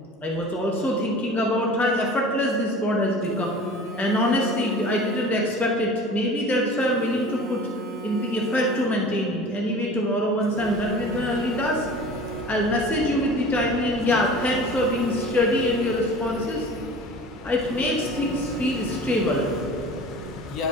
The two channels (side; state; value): both; normal; correlation 0.41